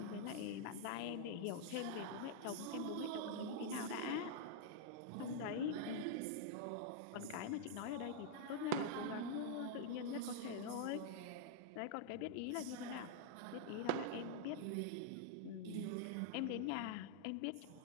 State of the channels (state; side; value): different; both; correlation -0.01